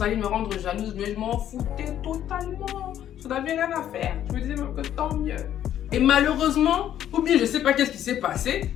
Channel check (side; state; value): right; quieter; 11.0 dB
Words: allait me rendre jalouse. Mais je m'en foutais totalement. Je n'avais rien à faire. Je me disais même que tant mieux. Et malheureusement, ou bien je sais pas qu'est-ce qui s'est passé,